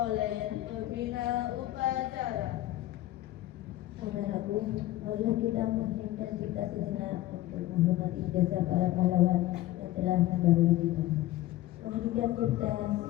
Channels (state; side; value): quieter; right; 15.4 dB